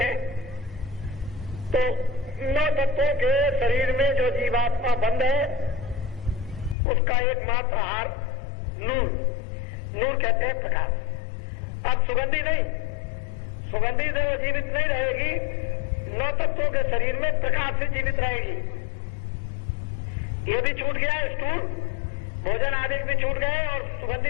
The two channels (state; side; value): drops out; right; at 6.8 s